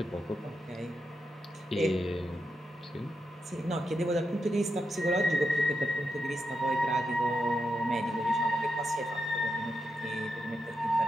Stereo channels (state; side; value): normal; both; correlation 0.85